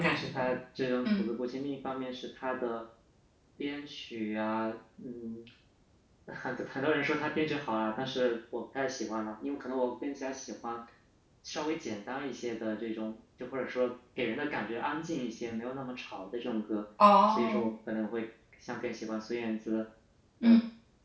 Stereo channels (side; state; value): both; identical; correlation 1.00